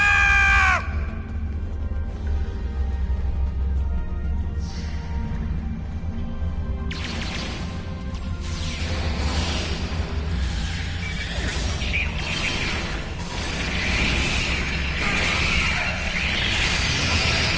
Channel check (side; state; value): both; identical; correlation 1.00